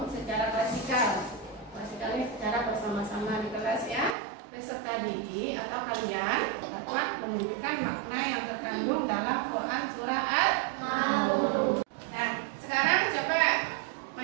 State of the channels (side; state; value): left; drops out; at 4.2 s